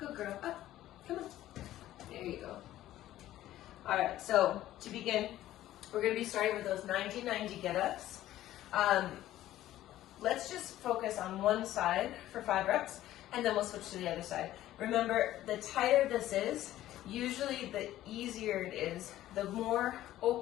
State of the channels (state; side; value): quieter; right; 14.0 dB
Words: girl. Up. Come on. There you go. All right, so to begin, we're going to be starting with those 90-90 get-ups. Let's just focus on one side for 5 reps, and then we'll switch to the other side. Remember, the tighter this is, usually the easier it is. The more